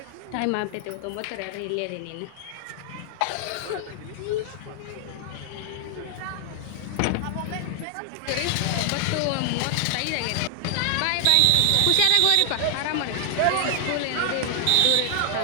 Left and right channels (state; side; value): different; both; correlation 0.00